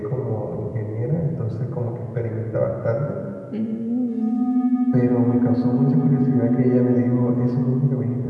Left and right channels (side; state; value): both; identical; correlation 1.00